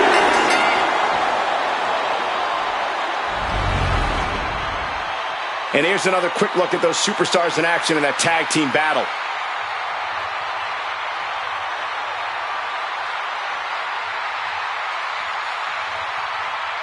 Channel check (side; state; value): both; identical; correlation 1.00